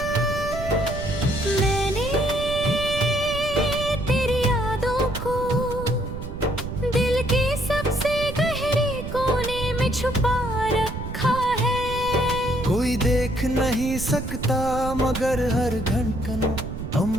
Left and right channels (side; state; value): right; noise; rumble, 7 dB below the sound